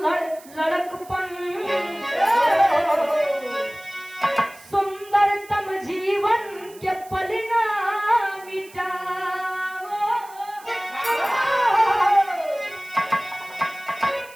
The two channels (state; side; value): noise; right; hiss, 22 dB below the sound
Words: लड़कपन, सुंदरतम जीवन के पल ना मिटाओ,